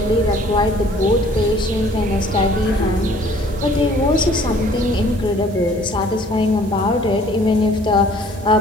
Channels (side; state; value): right; noise; hiss, 24 dB below the sound